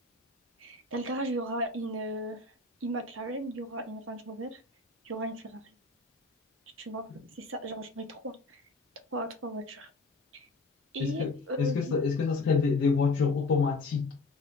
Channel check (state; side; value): quieter; right; 3.3 dB